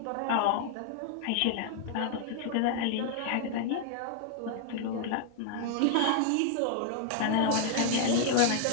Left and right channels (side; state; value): both; different; correlation 0.00